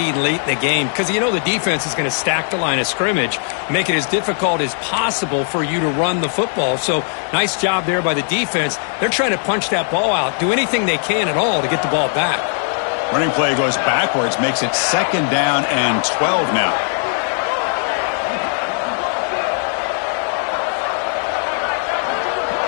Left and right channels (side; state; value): right; silent; 56 dB below the other